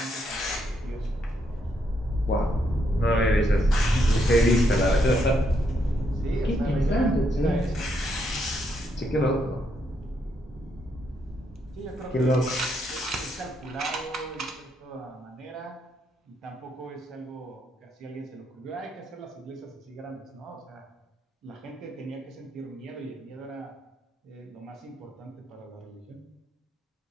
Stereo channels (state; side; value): normal; both; correlation 0.77